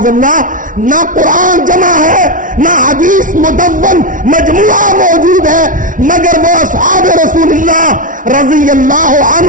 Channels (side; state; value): left; late; 0.38 ms